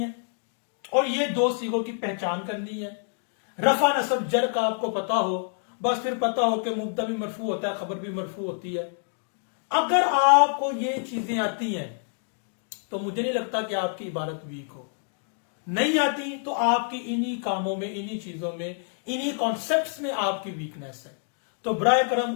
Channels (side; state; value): right; silent; 60 dB below the other